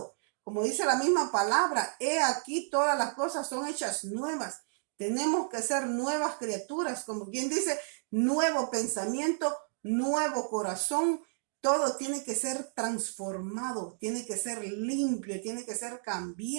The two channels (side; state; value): left; silent; digital silence